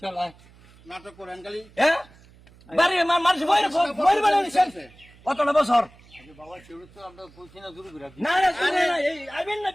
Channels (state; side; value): noise; right; hum, 25 dB below the sound